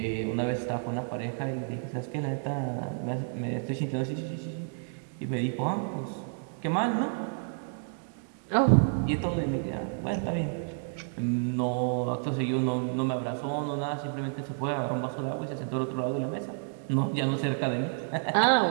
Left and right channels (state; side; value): silent; left; digital silence